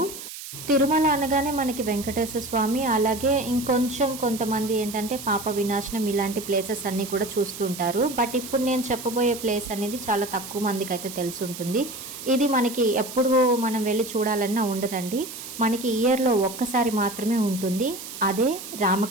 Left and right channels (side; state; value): right; noise; hiss, 11 dB below the sound